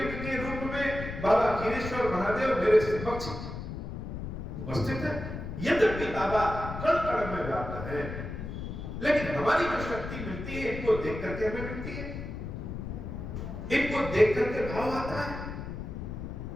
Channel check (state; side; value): noise; left; rumble, 7 dB below the sound